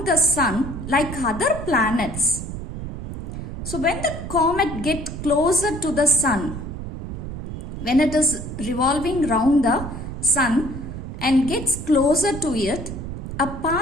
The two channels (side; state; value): right; noise; rumble, 8 dB below the sound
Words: the sun like other planets. So when the comet gets closer to the sun, when it is revolving round the sun and gets closer to it, a